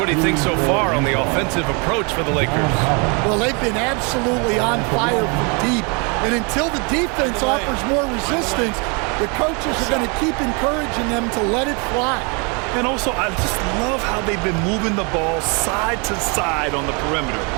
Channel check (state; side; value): quieter; left; 33.0 dB